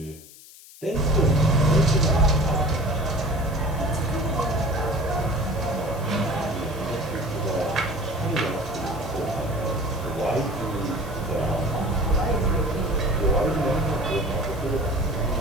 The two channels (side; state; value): left; noise; hiss, 20 dB below the sound